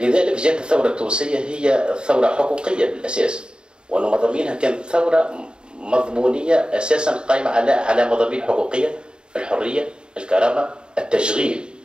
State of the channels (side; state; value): left; late; 0.050 ms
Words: جاءت الثوره التونسيه هي ثوره حقوقيه بالاساس، وان مضامينها كانت ثوره مضمونيه اساسا قائمه على مضامين حقوقيه: الحريه، الكرامه، التشغيل.